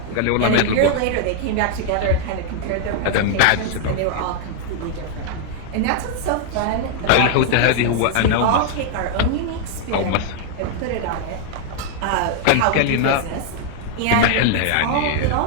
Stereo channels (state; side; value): different; both; correlation 0.00